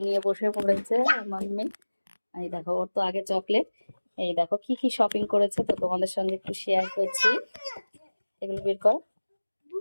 নিয়ে বসে পড়েছে আমার মেয়ে। এই দেখো, ওর তো আগে চকলেট। এই দেখো কি কি শপিং করেছে, তো তোমাদের সঙ্গে একটু শেয়ার করছি। এগুলো বের কর।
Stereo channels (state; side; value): inverted; both; correlation -1.00